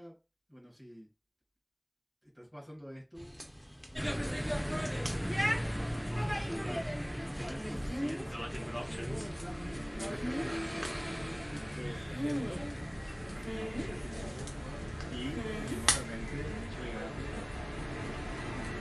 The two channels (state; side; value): identical; both; correlation 1.00